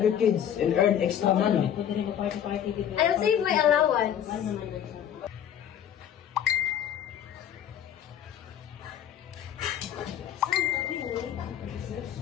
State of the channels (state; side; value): quieter; right; 9.8 dB